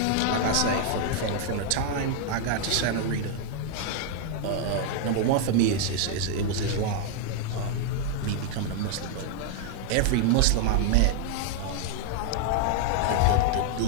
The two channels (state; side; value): different; both; correlation 0.00